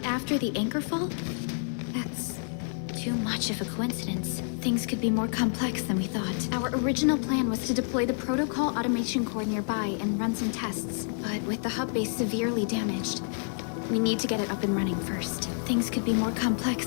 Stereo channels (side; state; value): right; silent; 59 dB below the other